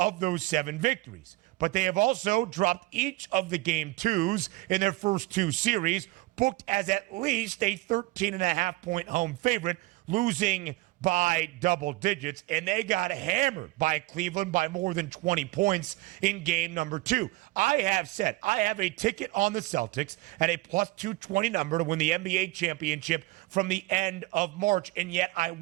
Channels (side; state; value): left; quieter; 20.7 dB